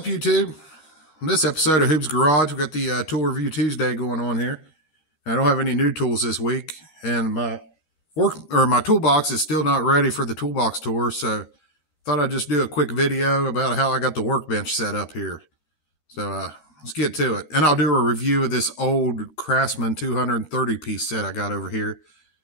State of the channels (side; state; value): right; late; 13 ms